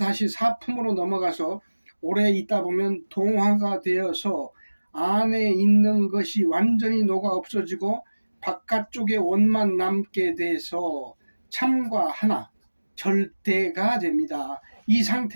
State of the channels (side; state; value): both; inverted; correlation -1.00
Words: 4품으로 넘어가서 오래 있다 보면 동화가 되어서 안에 있는 것이 완전히 녹아 없어지고 바깥쪽에 원만 남게 돼서 참과 하나, 절대가 됩니다. 이